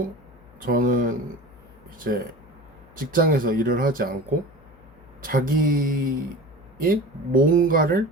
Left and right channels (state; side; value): noise; left; hum, 25 dB below the sound